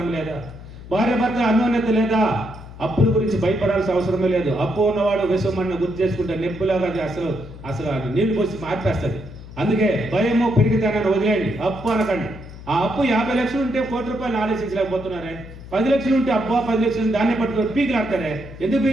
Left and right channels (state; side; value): noise; left; hum, 15 dB below the sound